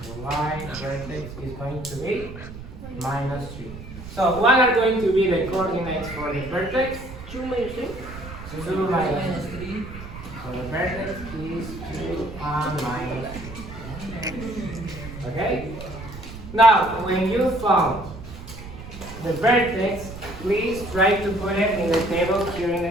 The y vertex is going to be minus 3. So, what are going to be the coordinates for the vertex? 2 minus 3. 2 minus 3. So, the vertex is 2 and minus 3. Okay? Now, when you found the vertex, please try to put it in the table here in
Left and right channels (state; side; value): noise; right; rumble, 12 dB below the sound